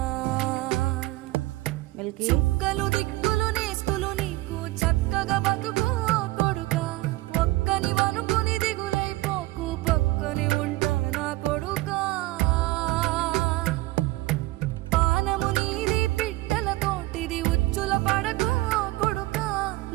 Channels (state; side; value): quieter; left; 19.7 dB